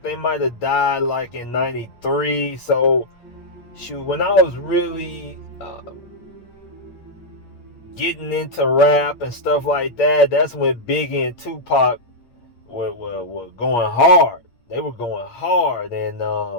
they might have died like in 93. So shoot, when I was really getting into rap and stuff like that, that's when Biggie and Tupac were going hard. They were going hard. And I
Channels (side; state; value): right; late; 8.2 ms